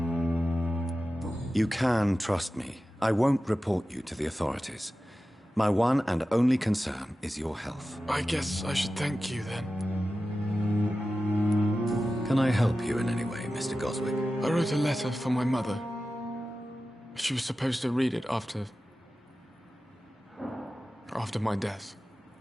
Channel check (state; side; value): normal; both; correlation 0.94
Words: You can trust me. I won't report you to the authorities. My one and only concern is your health. I guess I should thank you, then. Can I help you in any way, Mr. Goswick? I wrote a letter for my mother. She was supposed to read it after my death.